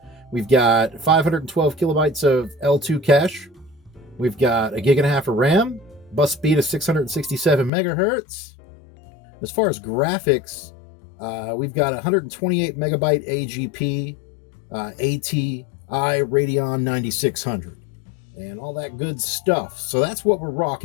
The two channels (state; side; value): drops out; right; at 7.7 s